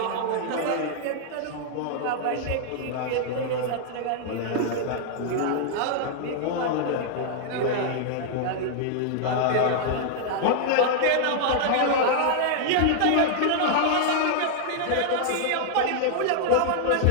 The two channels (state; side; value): different; both; correlation -0.01